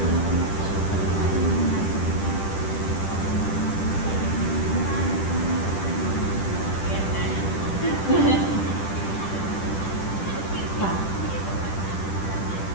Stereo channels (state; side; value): late; right; 10 ms